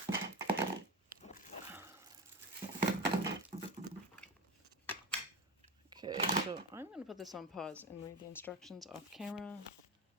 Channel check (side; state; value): both; normal; correlation 0.23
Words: okay, so I'm going to put this on pause and read the instructions off camera.